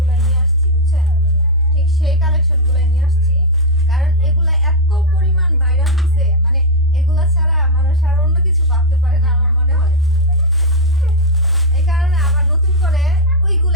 নিয়ে আসছি, বুঝছেন? ঠিক সেই কালেকশনগুলোই নিয়ে আসছি, কারণ এগুলা এত পরিমাণ ভাইরাল হয়েছে, মানে এগুলা ছাড়া মানুষ আর অন্য কিছু ভাবতে পারে না আমার মনে হয়। এই কারণে আবার নতুন করে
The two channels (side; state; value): both; normal; correlation -0.01